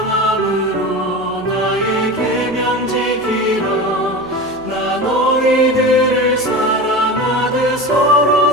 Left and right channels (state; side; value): noise; right; hum, 24 dB below the sound